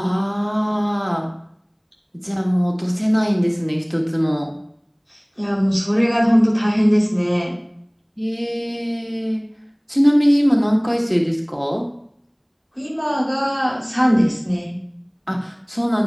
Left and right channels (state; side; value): identical; both; correlation 1.00